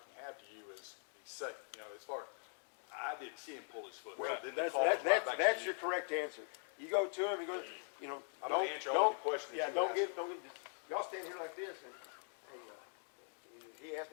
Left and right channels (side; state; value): right; silent; 50 dB below the other